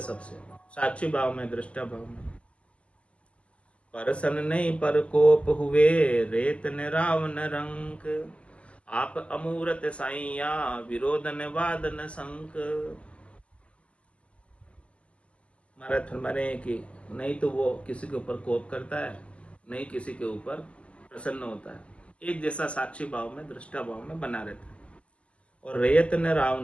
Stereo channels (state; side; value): late; right; 0.058 ms